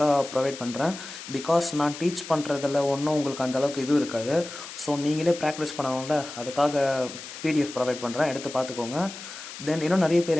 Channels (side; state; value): left; noise; hiss, 12 dB below the sound